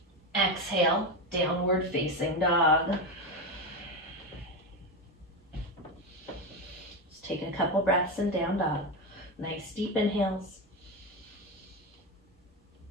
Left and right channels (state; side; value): normal; both; correlation 0.14